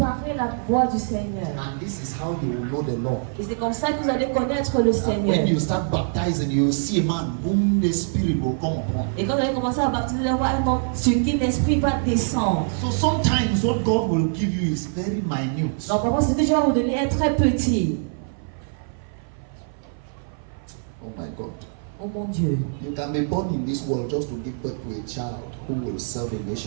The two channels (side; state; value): left; silent; 56 dB below the other